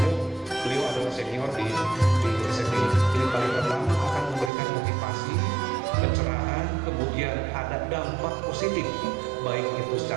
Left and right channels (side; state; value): left; drops out; at 4.5 s